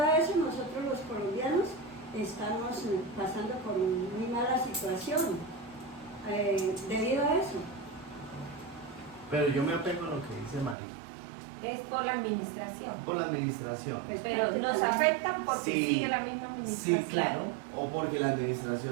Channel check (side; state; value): left; drops out; at 10.8 s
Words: a eso nosotros los colombianos estamos pasando por muy mala situación debido a eso. Pero yo me apego a lo que dice María. Es por la administración. Por la administración. Pues, Pero nos afecta porque Sí, sigue la misma administración. Sí, claro. O porque la